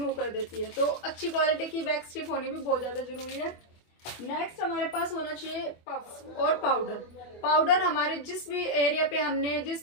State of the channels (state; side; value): late; right; 24 ms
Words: कर देती है। तो अच्छी क्वालिटी की वैक्स स्ट्रिप होनी भी बहुत ज़्यादा ज़रूरी है। नेक्स्ट हमारे पास होना चाहिए पफ्स और पाउडर। पाउडर हमारे जिस भी